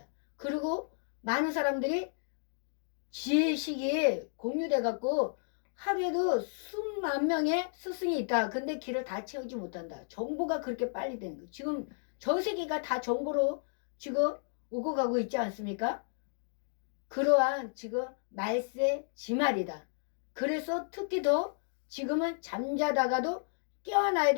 그리고 많은 사람들이 지혜식이 공유돼 갖고 하루에도 수만 명의 스승이 있다. 근데 길을 다 채우지 못한다. 정보가 그렇게 빨리 되는 거예요. 지금 전 세계가 다 정보로 지금 오고 가고 있지 않습니까? 그러한 지금 말세 지말이다. 그래서 특히 더 지금은 잠자다가도 깨어나야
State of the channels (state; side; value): silent; right; digital silence